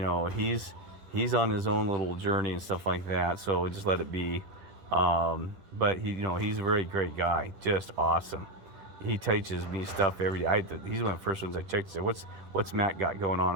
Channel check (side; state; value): left; late; 10 ms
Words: He's on his own little journey and stuff like that. So just let it be. But he's a very great guy, just awesome. He teaches me stuff every day. He's one of the first ones I checked to say, what's Matt got going on